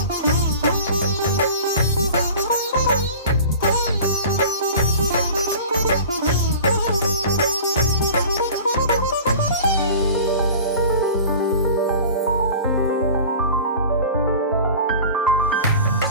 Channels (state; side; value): inverted; both; correlation -0.40